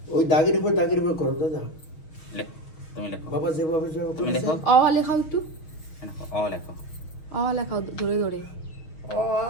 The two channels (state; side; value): late; right; 6.3 ms